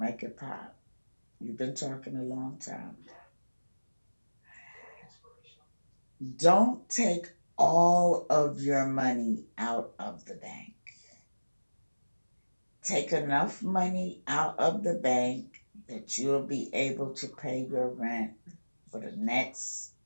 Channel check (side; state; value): both; inverted; correlation -1.00